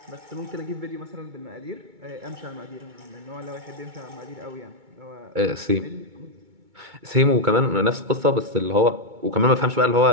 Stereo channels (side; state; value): left; late; 2.2 ms